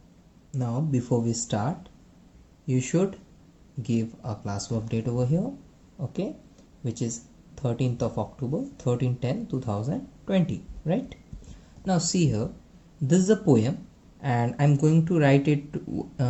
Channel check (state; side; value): identical; both; correlation 1.00